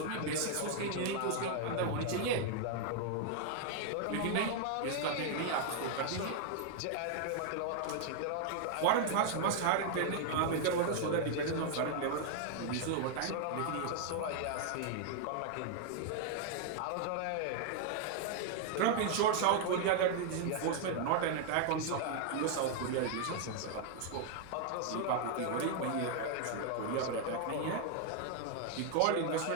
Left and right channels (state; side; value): different; both; correlation 0.00